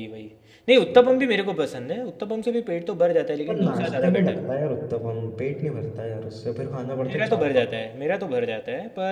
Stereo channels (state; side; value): identical; both; correlation 1.00